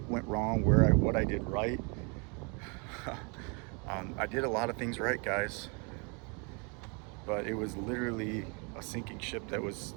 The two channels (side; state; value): left; quieter; 33.5 dB